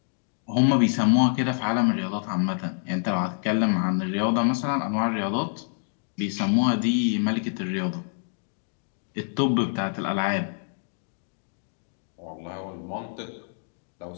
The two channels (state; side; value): silent; right; digital silence